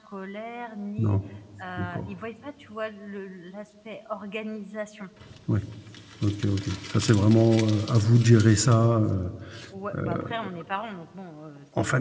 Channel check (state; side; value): identical; both; correlation 1.00